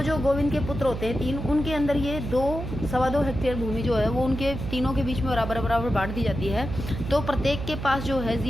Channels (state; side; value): noise; right; hum, 6 dB below the sound